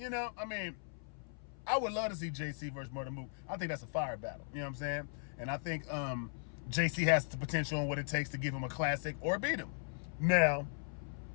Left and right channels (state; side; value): silent; right; 53 dB below the other